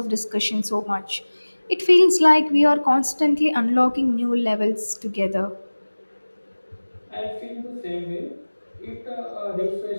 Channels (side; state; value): both; inverted; correlation -1.00